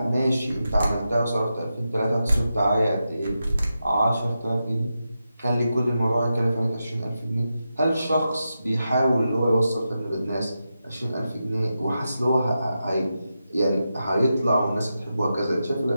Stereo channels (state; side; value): inverted; both; correlation -0.89